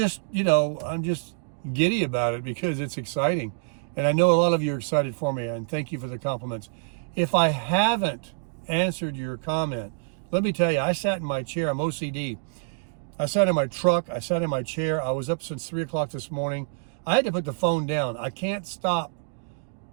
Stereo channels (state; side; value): silent; left; digital silence